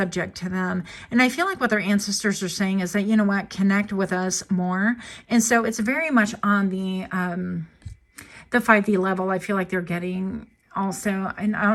to them. And I feel like what their ancestors are saying is that, you know what, connect with us more. And so it's very much on the 5D level. I feel like they're getting also, and I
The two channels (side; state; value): both; identical; correlation 1.00